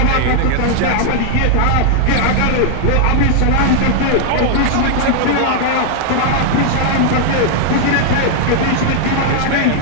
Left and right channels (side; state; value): both; different; correlation -0.01